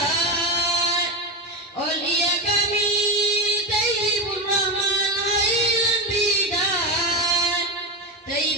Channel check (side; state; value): both; normal; correlation 0.16